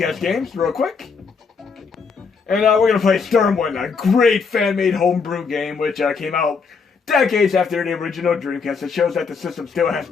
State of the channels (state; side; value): quieter; right; 5.3 dB